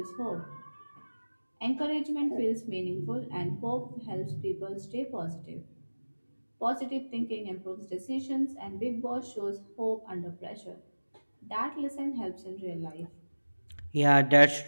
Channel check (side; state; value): both; inverted; correlation -1.00